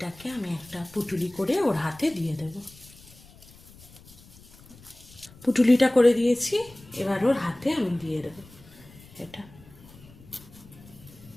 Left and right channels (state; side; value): noise; left; rumble, 23 dB below the sound